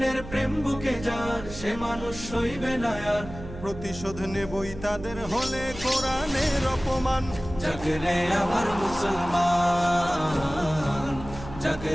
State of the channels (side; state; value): right; noise; hum, 13 dB below the sound